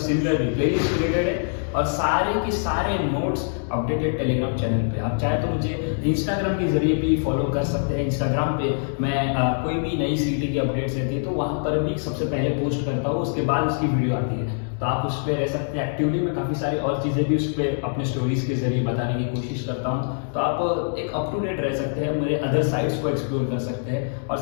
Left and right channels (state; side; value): silent; right; digital silence